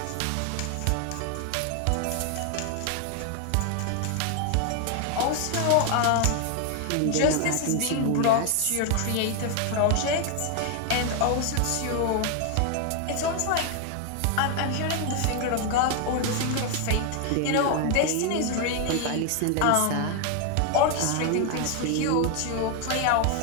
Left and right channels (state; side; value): different; both; correlation 0.01